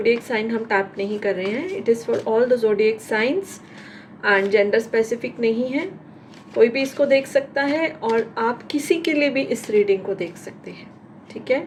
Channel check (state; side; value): identical; both; correlation 1.00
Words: साइन हम टैप नहीं कर रहे हैं। It is for all the zodiac signs and gender specific नहीं है। कोई भी इसको देख सकता है और आप किसी के लिए भी इस रीडिंग को देख सकते हैं, ठीक है?